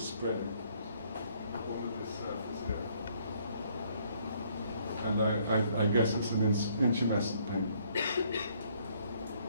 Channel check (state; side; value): inverted; both; correlation -0.65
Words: spread it all of this surface here. And I guess it's an intumescent paint.